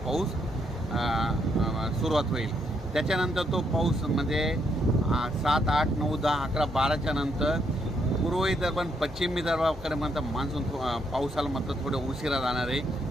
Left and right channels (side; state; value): both; normal; correlation 0.75